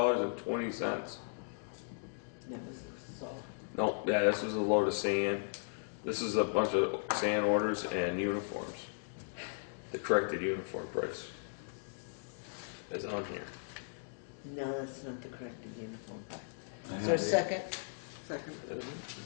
That was all. No, yeah, this is a load of sand. This is a bunch of sand orders and uniforms. The corrected uniform price is on here. No, that's not the correct uniform. I Is there a have second? Second.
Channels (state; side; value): silent; right; digital silence